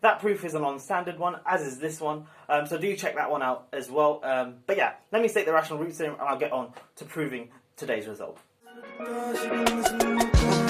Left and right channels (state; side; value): identical; both; correlation 1.00